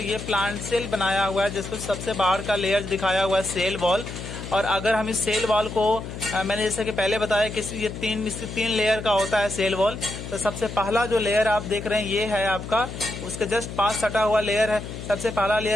ये प्लांट सेल बनाया हुआ है, जिसको सबसे बाहर का लेयर दिखाया हुआ है सेल वॉल। और अगर हम इस सेल वॉल को मैंने जैसे कि पहले बताया कि ये 3 लेयर का होता है सेल वॉल। तो सबसे पहला जो लेयर आप देख रहे हैं ये है आपका, उसके जस्ट पास सटा हुआ लेयर है सबसे पहला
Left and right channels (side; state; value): left; noise; hum, 9 dB below the sound